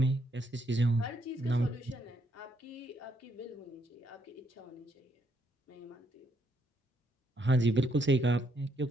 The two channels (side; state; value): both; normal; correlation 0.73